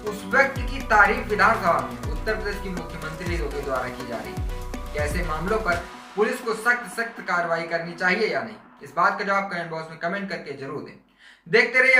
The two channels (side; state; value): both; identical; correlation 1.00